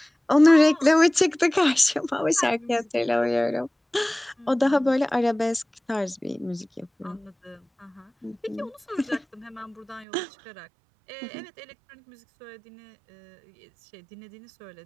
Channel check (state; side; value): drops out; left; at 10.1 s